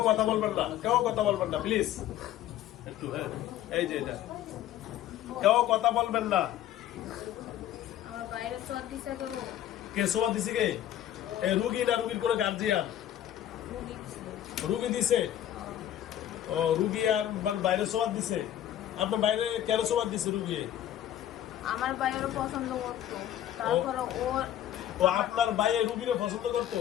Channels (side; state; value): right; quieter; 11.8 dB